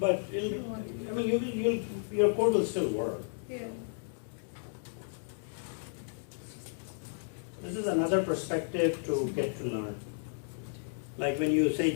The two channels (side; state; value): right; silent; digital silence